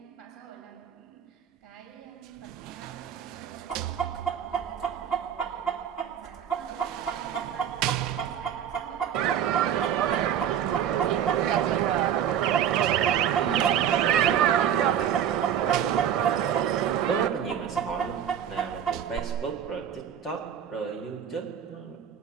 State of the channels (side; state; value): left; quieter; 9.2 dB